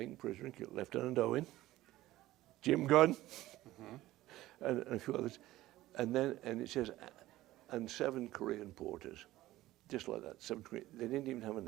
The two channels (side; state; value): left; quieter; 16.1 dB